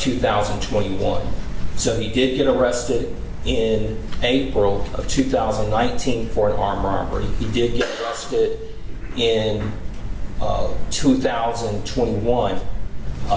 So he did get arrested in April of 2019 for an armed robbery. He did get arrested in 2021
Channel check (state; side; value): identical; both; correlation 1.00